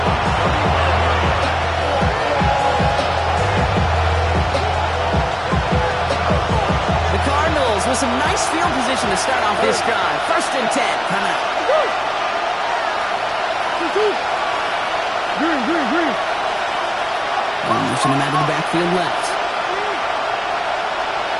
The Cardinals with some nice field position to start off this drive. First and 10 coming up. Motion him out of the backfield left.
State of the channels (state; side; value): identical; both; correlation 1.00